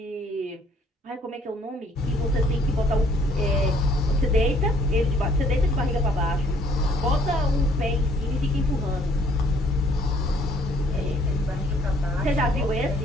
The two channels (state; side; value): normal; both; correlation 0.62